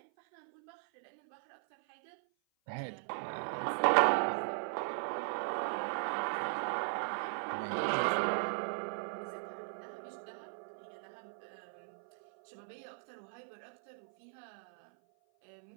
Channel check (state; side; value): silent; left; 53 dB below the other